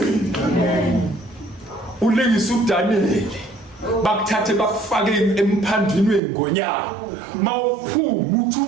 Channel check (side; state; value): left; drops out; at 6.2 s